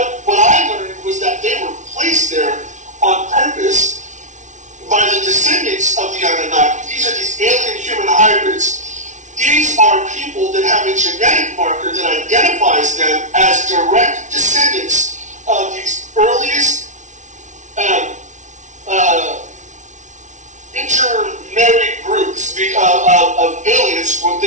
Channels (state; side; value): late; left; 0.36 ms